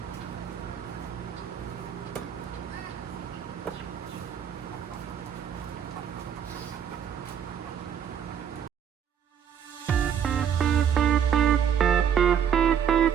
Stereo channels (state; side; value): quieter; left; 8.5 dB